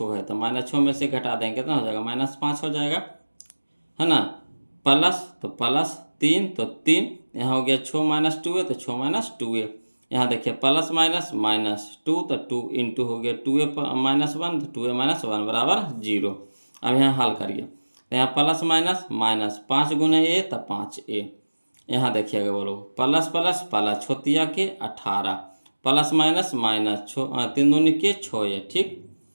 है, तो -6 में से घटा देंगे कितना हो जाएगा, -5 हो जाएगा, है ना, प्लस तो प्लस 3, तो 3 यहाँ हो गया 6 - 2 है, तो 6 - 2 है। यहाँ देखिए प्लस माइनस -2, तो 2 इंटू हो गया 2a -1, तो 2a -1 बराबर 0। अब यहाँ हल करिए, तो यहाँ प्लस माइनस माइनस 5 गुने a, तो 5a। यहाँ देखिएगा बोलो, प्लस प्लस प्लस छोतिया के 18, प्लस माइनस माइनस 3 दूनी के 6a, ठीक।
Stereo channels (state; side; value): inverted; both; correlation -1.00